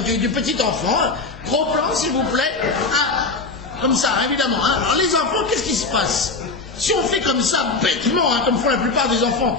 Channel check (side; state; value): right; quieter; 3.8 dB